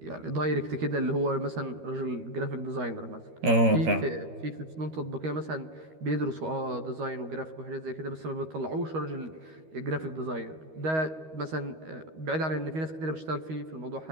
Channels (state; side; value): late; left; 13 ms